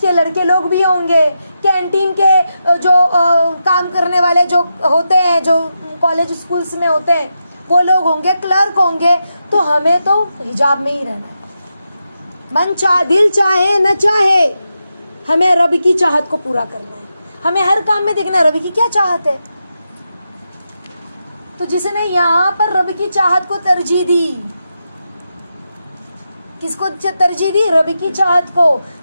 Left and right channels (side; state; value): both; inverted; correlation -0.87